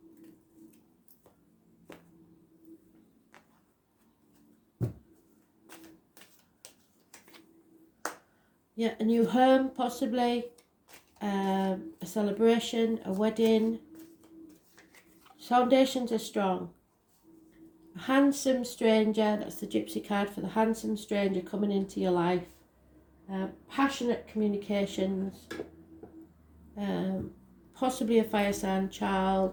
Yeah, a new home possibly, a celebration, a wedding. Foundations are strong. A handsome stranger, that's the gypsy card for the handsome stranger coming into your life. Passionate communications, possibly a fire sign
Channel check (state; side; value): identical; both; correlation 1.00